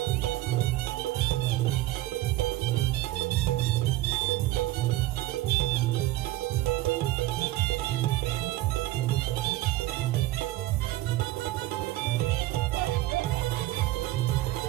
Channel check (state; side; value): quieter; left; 16.7 dB